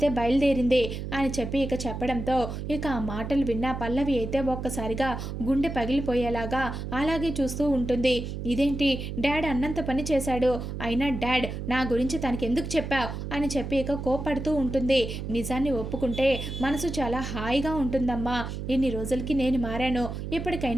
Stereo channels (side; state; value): right; noise; hum, 6 dB below the sound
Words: బయలుదేరింది అని చెప్పి ఇక చెప్పడంతో ఇక ఆ మాటలు విన్న పల్లవి అయితే ఒక్కసారిగా గుండె పగిలిపోయేలాగా అలాగే చూస్తూ ఉంటుంది. ఇదేంటి డాడ్ అన్నంత పని చేశాడు, అయినా డాడ్ నా గురించి తనకి ఎందుకు చెప్పావు అని చెప్పి ఇక కోపడుతూ ఉంటుంది. నిజాన్ని ఒప్పుకుంటే మనసు చాలా హాయిగా ఉంటుందమ్మా. ఇన్ని రోజులకి నేను మారాను,